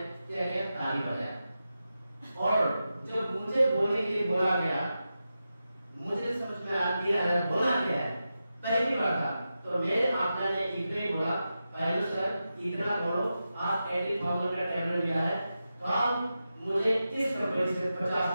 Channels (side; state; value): both; inverted; correlation -0.91